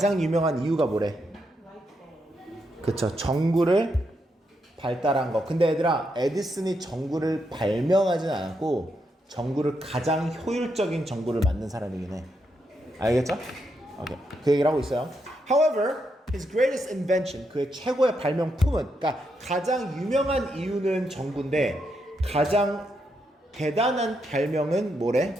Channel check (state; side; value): normal; both; correlation 0.81